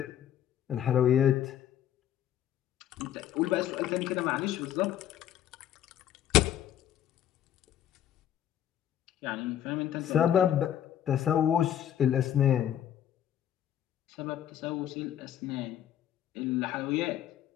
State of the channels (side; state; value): right; quieter; 10.8 dB